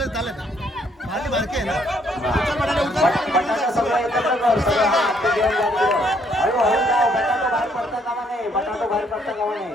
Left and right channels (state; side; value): normal; both; correlation 0.68